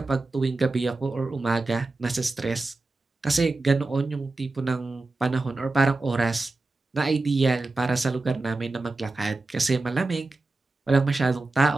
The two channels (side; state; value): left; quieter; 3.3 dB